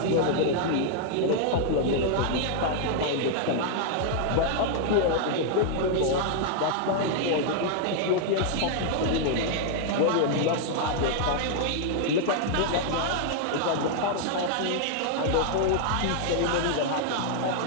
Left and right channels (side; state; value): both; different; correlation 0.00